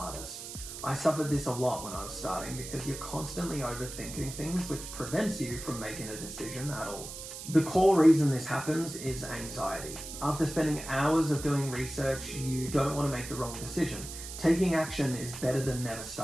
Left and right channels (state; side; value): noise; right; hiss, 10 dB below the sound